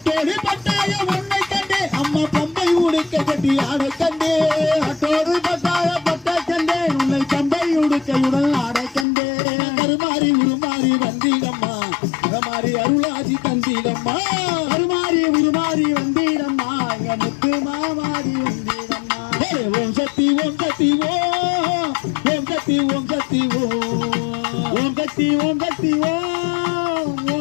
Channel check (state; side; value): drops out; right; at 9.1 s